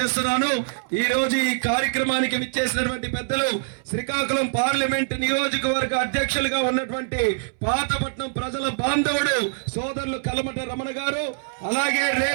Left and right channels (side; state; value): left; silent; 63 dB below the other